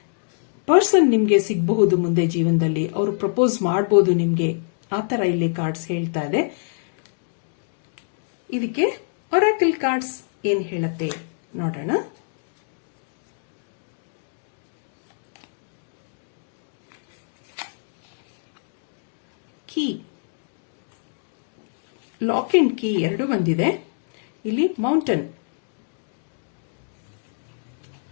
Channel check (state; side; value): silent; right; digital silence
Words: ಪರ್ಸನ್ ನಿಮ್ಗೆ ಸಿಗಬಹುದು ಮುಂದೆ ಜೀವನದಲ್ಲಿ. ಅವರು ಪ್ರಪೋಸ್ ಮಾಡಬಹುದು ನಿಮ್ಗೆ. ಆತರ ಇಲ್ಲಿ ಕಾರ್ಡ್ಸ್ ಹೇಳ್ತಾ ಇದೆ. ಇದಕ್ಕೆ ಒರಾಕಲ್ ಕಾರ್ಡ್ಸ್ ಏನ್ ಹೇಳುತ್ತೆ ನೋಡೋಣ. ಕೀ, ಲಾಕ್ ಅಂಡ್ ಕೀ ಎರಡು ಬಂದಿದೆ. ಇಲ್ಲಿ mountain,